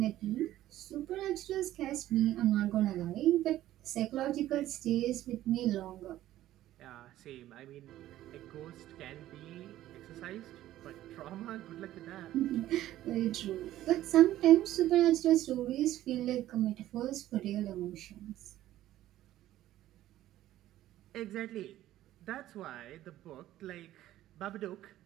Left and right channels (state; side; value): quieter; left; 13.9 dB